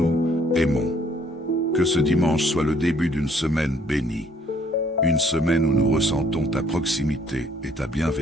aimons. Que ce dimanche soit le début d'une semaine bénie. Une semaine où nous ressentons ta proximité et ta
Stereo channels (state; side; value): normal; both; correlation 0.63